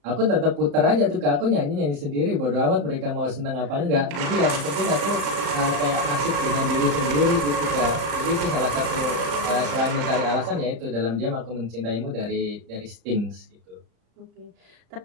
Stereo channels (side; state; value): left; late; 34 ms